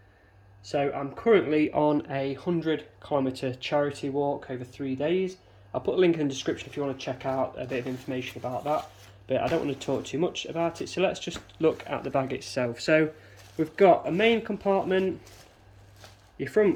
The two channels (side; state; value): both; identical; correlation 1.00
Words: So I'm currently on a 100-kilometre charity walk over 3 days. I'll put a link in the description if you want to check out a bit of information about that, but I don't want to talk too much about it, so let's just look at the bag itself. So we've got a main compartment, your